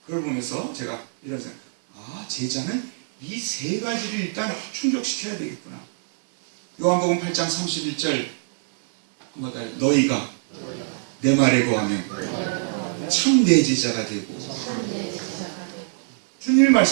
그걸 보면서 제가 이런 생각, 제자는 이 세 가지를 일단 충족시켜야 되겠구나. 요한복음 8장 31절 너희가 내 말에 거하면 참 내 제자가 되고, 주님이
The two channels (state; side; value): silent; left; digital silence